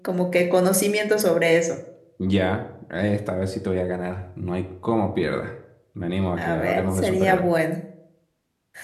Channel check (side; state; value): both; identical; correlation 1.00